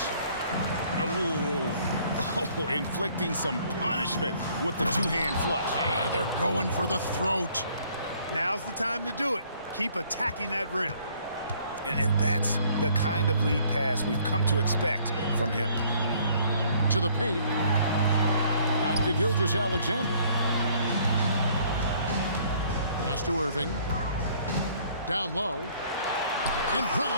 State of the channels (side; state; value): both; inverted; correlation -0.60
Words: Oh, inflicting some punishment with the two-hand flush. They're going for the throat. Now's the time to do it. Keep attacking that rim. And that's the kind of lead pass we've come to expect from him. To the paint. Back to Gilgeous-Alexander. Pass to Irving. Down low. And